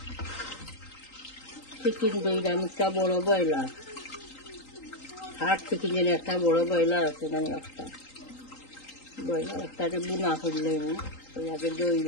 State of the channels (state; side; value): late; right; 3.8 ms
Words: চিকেন দইলাম একটা বড় ব্রয়লার, হাট চিকেন যেন একটা বড় ব্রয়লার আছে, মানে একটা ব্রয়লার একটাতে বুনা করলে আগে দই